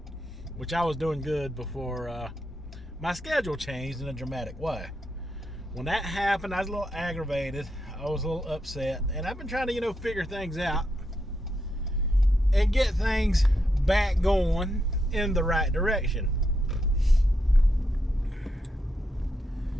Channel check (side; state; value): both; normal; correlation 0.82